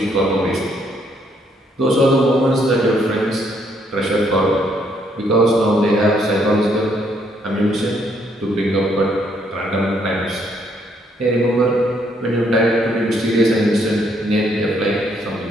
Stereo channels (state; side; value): normal; both; correlation 0.71